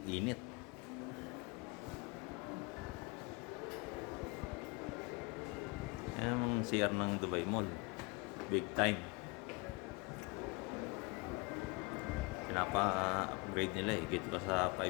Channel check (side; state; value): right; quieter; 28.0 dB